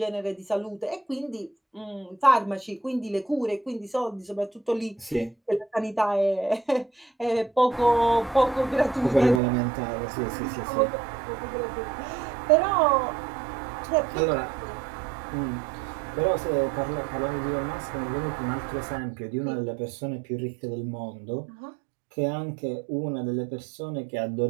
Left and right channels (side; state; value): left; drops out; at 9.4 s